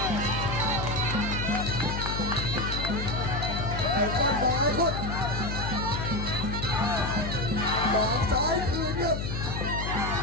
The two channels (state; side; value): noise; left; hum, 3 dB below the sound